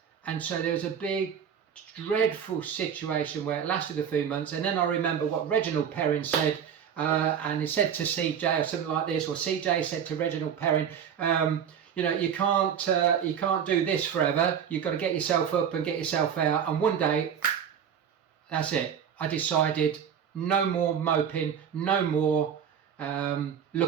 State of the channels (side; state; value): left; quieter; 8.2 dB